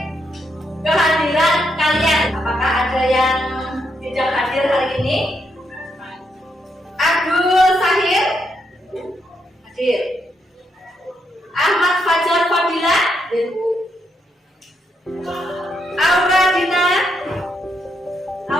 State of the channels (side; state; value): both; normal; correlation 0.79